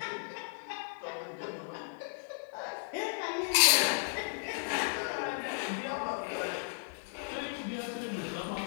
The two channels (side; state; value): right; silent; digital silence